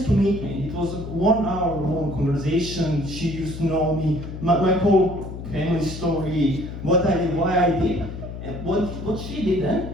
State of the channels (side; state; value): left; noise; hum, 9 dB below the sound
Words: to meet me. It was a 1 hour long conversation. She used to know me, my whole family story, what I did, why I did. And what she did